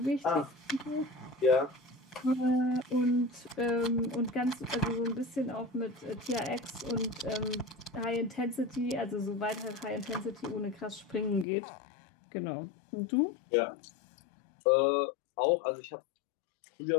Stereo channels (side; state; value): right; drops out; at 11.5 s